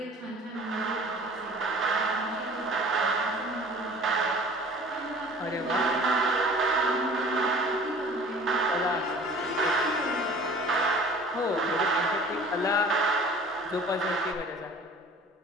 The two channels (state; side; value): normal; both; correlation 0.46